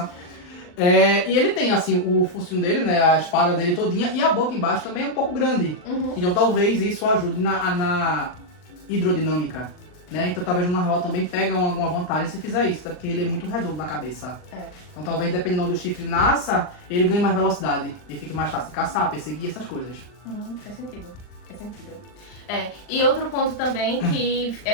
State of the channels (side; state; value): right; late; 39 ms